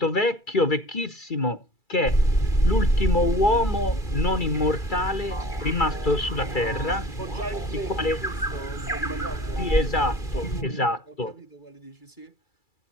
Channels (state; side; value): late; right; 2.3 ms